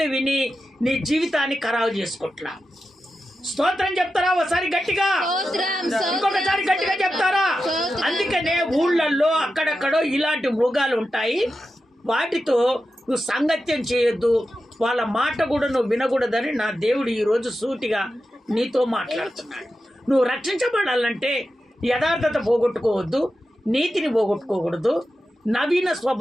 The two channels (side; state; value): both; normal; correlation 0.91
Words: విని నీ జీవితాన్ని ఖరాబు చేసుకుంటున్నావు. స్తోత్రం చెప్తారా ఒకసారి గట్టిగా? ఇంకొకసారి గట్టిగా చెప్తారా? అందుకనే ఊళ్ళల్లో అక్కడక్కడో ఇలాంటి మృగాలు ఉంటాయి. వాటితో నువ్వు సంగత్యం చేయొద్దు, వాళ్ళ మాట కూడా నువ్వు వినకూడదని నా దేవుడు ఈరోజు సూటిగా నీతో మాట్లాడుతున్నాడు. నువ్వు రక్షించబడాలంటే యథార్థత పోగొట్టుకోవద్దు, నీతిని పోగొట్టుకోకూడదు, నవీన